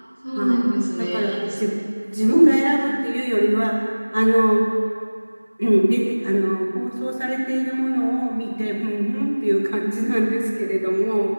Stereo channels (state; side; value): inverted; both; correlation -1.00